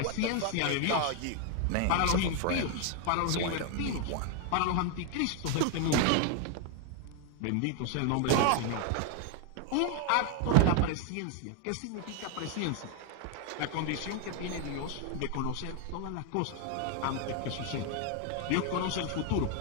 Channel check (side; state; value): both; different; correlation 0.01